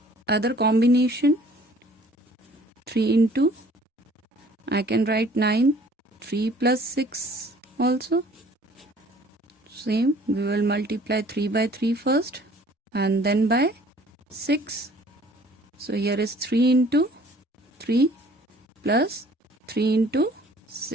other combination. 3 into, I can write 9, 3 plus 6 also. Same, we will multiply 3 by 3 first and then by 6. So here is 3 into 3 plus 3 into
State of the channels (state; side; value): normal; both; correlation 0.54